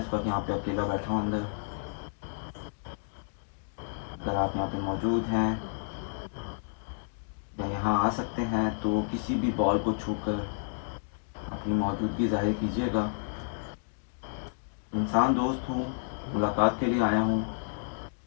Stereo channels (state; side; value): silent; right; digital silence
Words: वक्त यहाँ पे अकेला बैठा हूँ अंदर। अगर आप यहाँ पे मौजूद हैं या यहाँ आ सकते हैं तो किसी भी बॉल को छूकर अपनी मौजूदगी जाहिर कीजिएगा। इंसान दोस्त हूँ, मुलाकात के लिए आया हूँ,